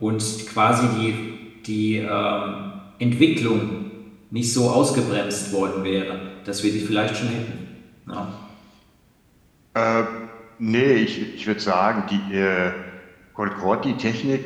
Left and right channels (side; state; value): both; identical; correlation 1.00